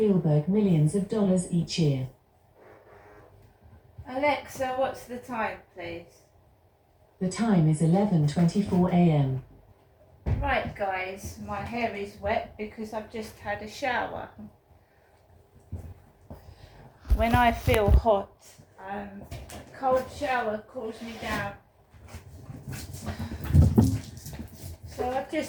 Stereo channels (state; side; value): identical; both; correlation 1.00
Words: millions of dollars each year. Alexa, what's the time, please? The time is 11:24 a.m. Right guys, my hair is wet because I've just had a shower. When I feel hot, a cold shower cools me down. So I've